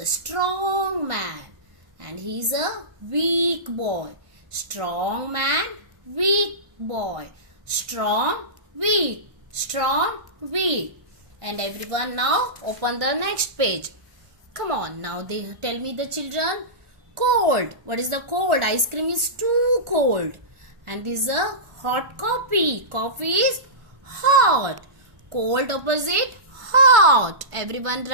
strong man and he's a weak boy. Strong man, weak boy. Strong, weak. Strong, weak. And everyone now open the next page. Come on, now they tell me the children. Cold. What is the cold? Ice cream is too cold. And this is a hot coffee. Coffee is hot. Cold opposite hot. Everyone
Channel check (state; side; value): late; left; 1.5 ms